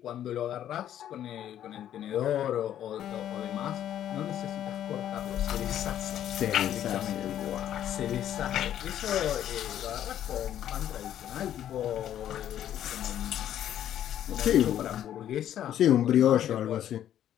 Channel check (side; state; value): right; quieter; 11.0 dB